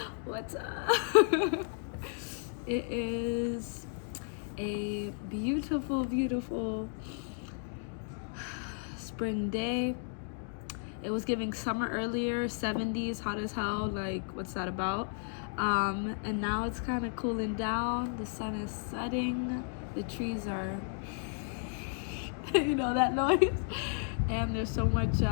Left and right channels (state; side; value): silent; right; 55 dB below the other